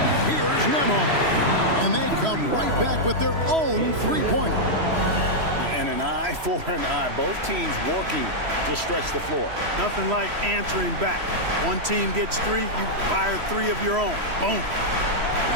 Here's Nemhard. And they come right back with their own three-pointer. And an eye for an eye. Both teams working to stretch the floor. Nothing like answering back. One team gets 3, you fire 3 of your own. Boom.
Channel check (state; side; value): late; left; 3.0 ms